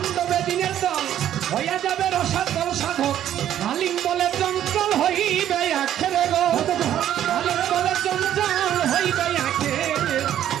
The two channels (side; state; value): left; quieter; 11.2 dB